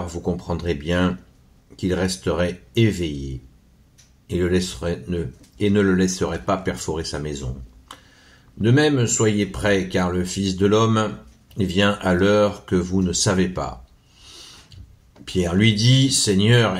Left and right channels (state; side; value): identical; both; correlation 1.00